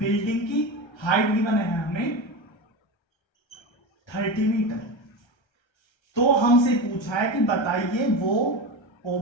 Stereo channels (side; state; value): right; late; 1.3 ms